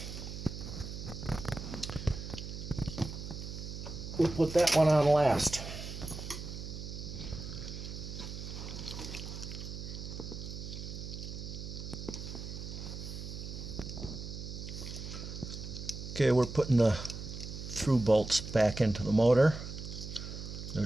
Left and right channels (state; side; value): noise; right; hum, 8 dB below the sound